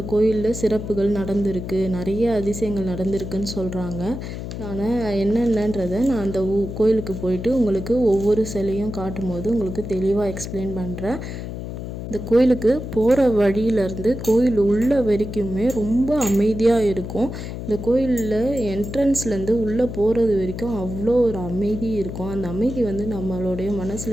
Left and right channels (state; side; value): noise; left; hum, 7 dB below the sound